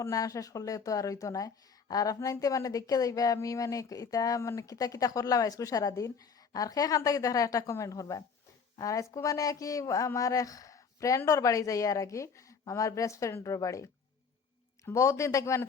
না শেষ করলে তো আর হইতো নাই আর আপনার মানে দেখে যাইবা আমি মানে ইটা মানে কিতা কিতা করলাম আজকে সারাদিন আর সেখান থেকে দেখা একটা কমেন্ট করবা আর আজকে মানে কি আমার এক ফ্রেন্ডর বাড়ি যাই আর কি আমার বেস্ট ফ্রেন্ডর বাড়ি বহুত দিন থেকে মানে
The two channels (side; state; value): right; quieter; 5.8 dB